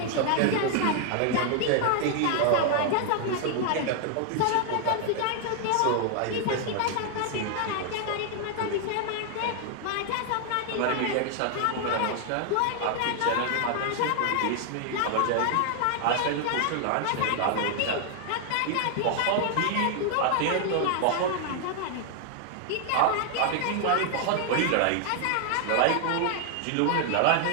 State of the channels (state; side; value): different; both; correlation 0.00